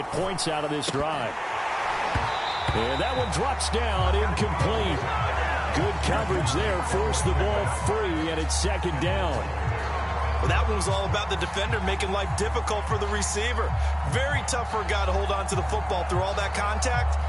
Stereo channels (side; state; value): both; identical; correlation 1.00